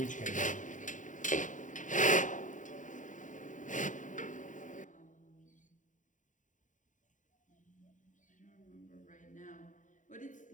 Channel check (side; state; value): right; late; 0.37 ms